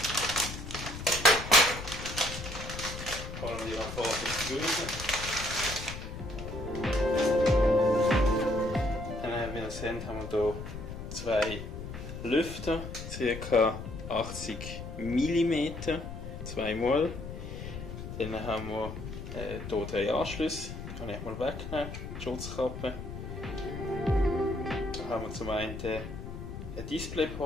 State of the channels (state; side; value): noise; left; rumble, 8 dB below the sound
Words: Holen wir die noch fertig zu lösen. Wie ihr seht, haben wir hier zwei Lüfter, ca. 80 mm, zweimal. Dann haben wir hier 3 Anschlüsse, kann ich mal wegnehmen, die Schutzkappe. Da haben wir zum einen einen